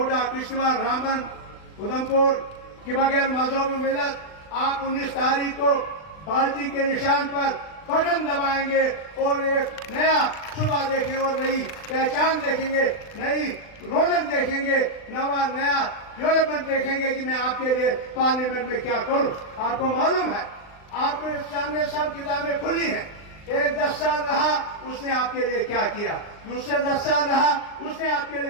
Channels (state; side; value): late; right; 39 ms